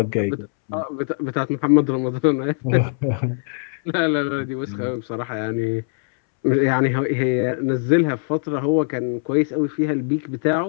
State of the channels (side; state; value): right; silent; 65 dB below the other